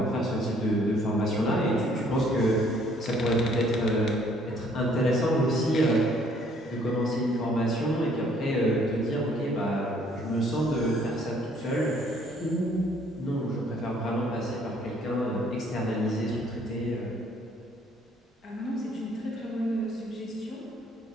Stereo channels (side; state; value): both; normal; correlation 0.62